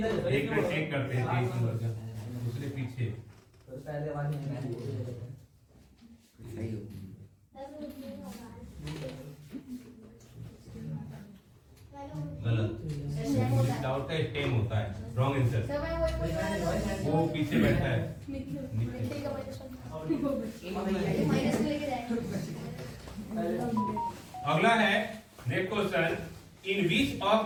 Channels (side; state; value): both; identical; correlation 1.00